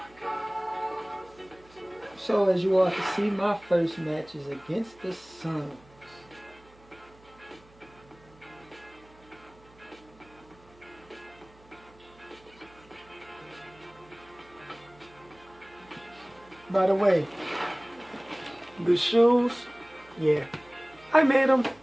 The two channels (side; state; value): right; noise; hum, 26 dB below the sound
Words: So, as you all can see, my first match is against the Suns. By the way, the shoes, yeah, I made them.